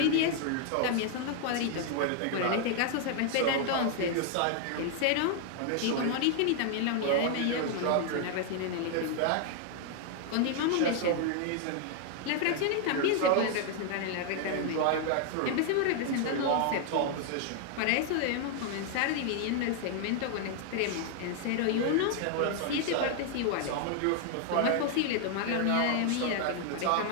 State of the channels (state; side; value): different; both; correlation 0.00